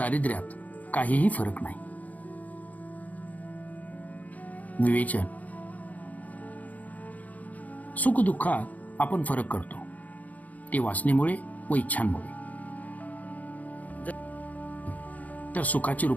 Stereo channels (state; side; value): late; right; 0.076 ms